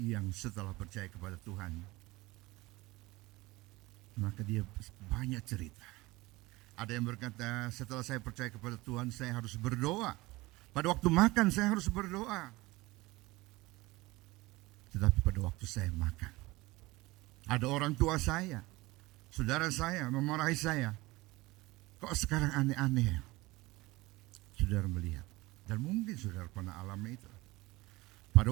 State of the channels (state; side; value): quieter; left; 20.9 dB